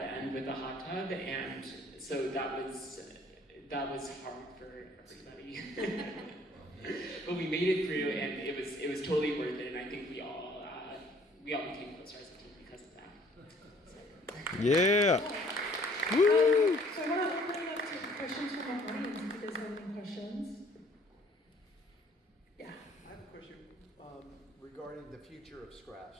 end with a hot tub, and so that was hard for everybody. But we made it through, and it was totally worth it. And I think we all became closer as a team because of that. So. Yeah. Woo! So I want to open it up to questions from our audience if you guys have any questions. Yeah. I have a question regarding the future of Scraps.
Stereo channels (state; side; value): normal; both; correlation 0.58